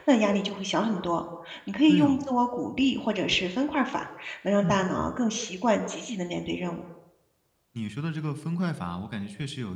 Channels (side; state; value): both; identical; correlation 1.00